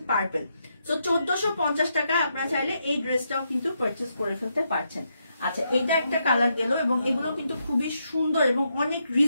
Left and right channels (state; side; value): inverted; both; correlation -0.80